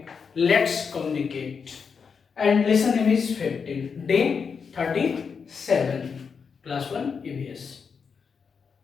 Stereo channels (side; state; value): right; quieter; 5.9 dB